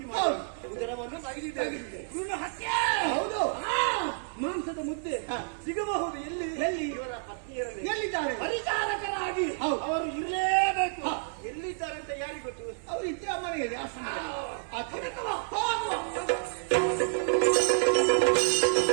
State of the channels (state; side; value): silent; left; digital silence